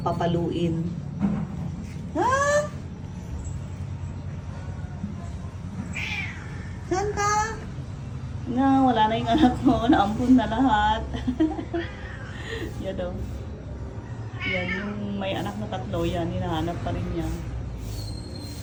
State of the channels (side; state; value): both; identical; correlation 1.00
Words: papaluin. Ha? Saan ka? Na, wala na yung anak mo. Naampun na lahat. Yan o. Yan, yung may anak na tatlo yan. Hinahanap pa rin niya.